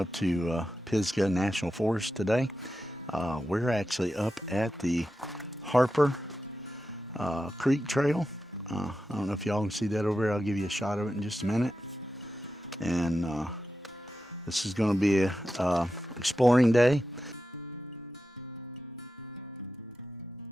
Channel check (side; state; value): both; normal; correlation 0.90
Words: to Pisgah National Forest today. We're actually up at the Harper Creek Trail. I don't know if y'all can see that over there. I'll give you a shot of it in just a minute. And this is going to be a exploring day.